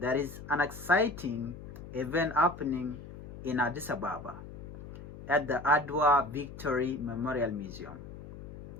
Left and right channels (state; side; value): noise; left; hum, 13 dB below the sound